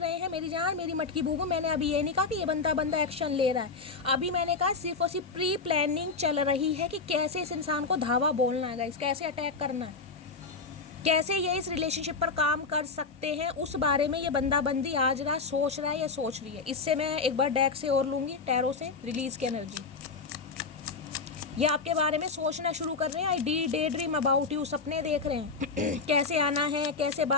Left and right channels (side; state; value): right; quieter; 4.4 dB